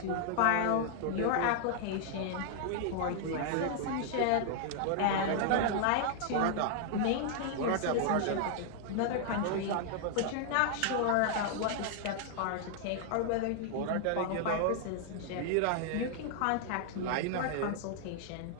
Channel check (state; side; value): different; both; correlation 0.00